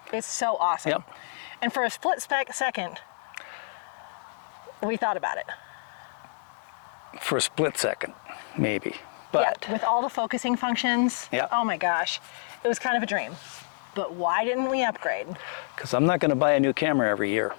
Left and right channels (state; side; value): silent; right; 59 dB below the other